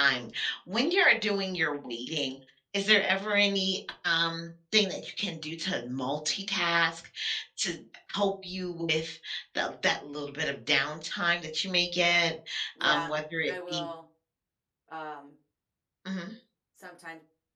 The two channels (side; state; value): both; identical; correlation 1.00